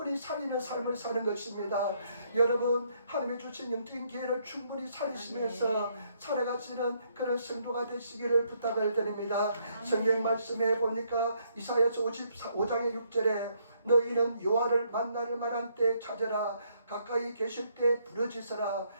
살리는 삶을 사는 것입니다. 여러분, 하나님이 주신 영적인 기회를 충분히 살리시면서 살아가시는 그런 성도가 되시기를 부탁을 드립니다. 성경 말씀에 보니까 이사야서 55장의 6절에 너희는 여호와를 만날 만한 때 찾으라. 가까이 계실 때 부르짖으라.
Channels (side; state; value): both; inverted; correlation -0.71